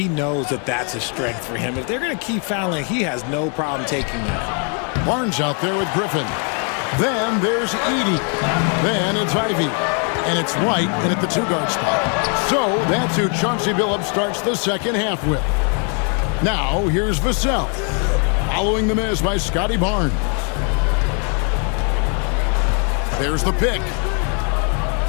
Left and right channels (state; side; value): quieter; right; 39.9 dB